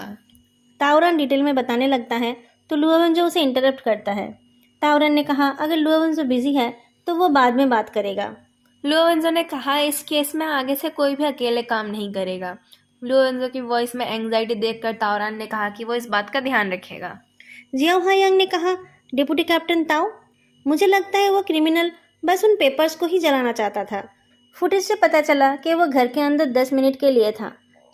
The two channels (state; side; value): identical; both; correlation 1.00